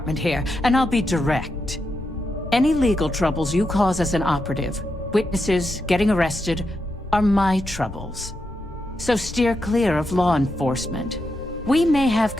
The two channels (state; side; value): normal; both; correlation 0.85